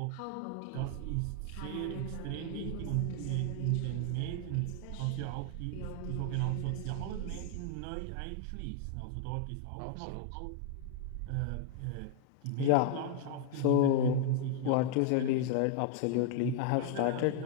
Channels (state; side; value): different; both; correlation 0.00